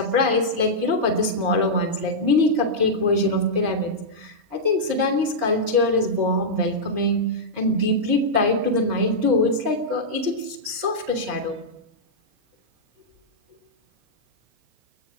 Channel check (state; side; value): late; left; 4.7 ms